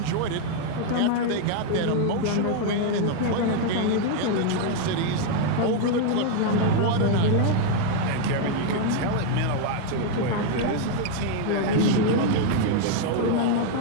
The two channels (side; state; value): both; different; correlation 0.00